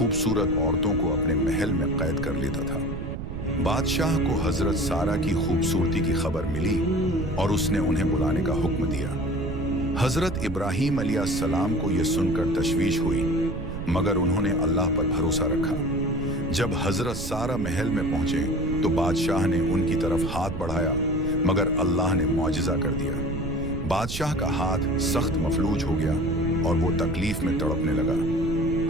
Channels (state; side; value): noise; right; rumble, 6 dB below the sound